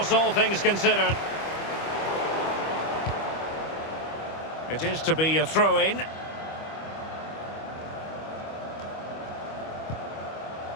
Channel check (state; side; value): late; right; 25 ms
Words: all things considered. It is to be a throw-in.